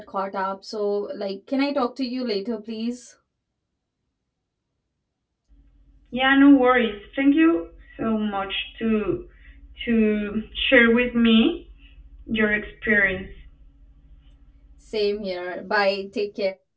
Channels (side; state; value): both; identical; correlation 1.00